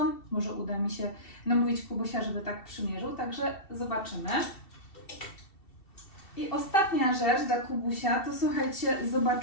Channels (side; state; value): right; late; 2.7 ms